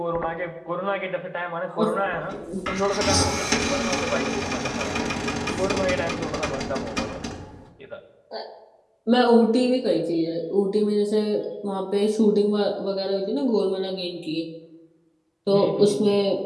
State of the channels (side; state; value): both; identical; correlation 1.00